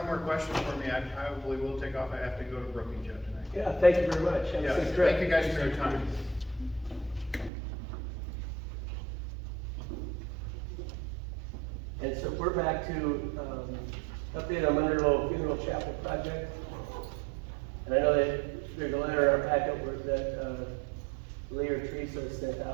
more questions for me, I probably will take off. I have to go to Brookings yet tonight. Yeah, thank you very much. Have a Yeah, safe trip. thank you guys for your time. And so we're back to, update on Monroe Funeral Chapel project. And I know that there's a letter in our packet that, Lee or Teresa sent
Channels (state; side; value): drops out; left; at 7.5 s